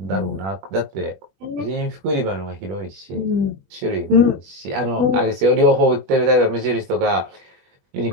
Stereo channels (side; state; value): left; late; 21 ms